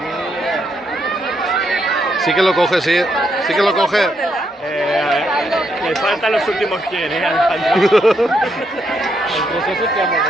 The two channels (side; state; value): both; normal; correlation 0.78